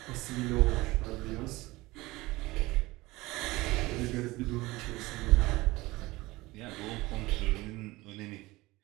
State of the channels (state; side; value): quieter; left; 20.4 dB